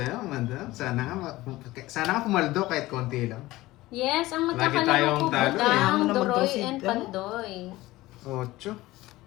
madam. Sana nga pumaldo kahit konti lang. Yes, ang Lagi magkakalaro tayong ko, talo eh. Budang, Ano naman daw Doroy, si- and Pandoy. 8.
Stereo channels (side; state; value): right; quieter; 18.2 dB